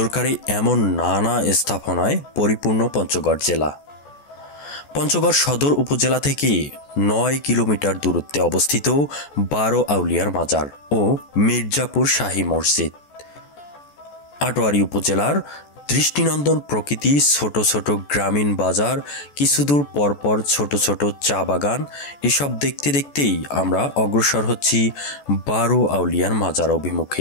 এমন নানা স্থাপনায় পরিপূর্ণ পঞ্চগড় জেলা। পঞ্চগড় সদর উপজেলা থেকে 9 কিলোমিটার দূরত্বে অবস্থিত 12 আউলিয়ার মাজার ও মির্জাপুর শাহী মসজিদ। আটোয়ারী উপজেলার দৃষ্টিনন্দন প্রকৃতি, ছোট ছোট গ্রামীণ বাজার, কিছুদূর পরপর ছোট ছোট চা বাগান, এসব দেখতে দেখতেই আমরা অগ্রসর হচ্ছি 12 আউলিয়ার মাজার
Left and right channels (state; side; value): late; right; 14 ms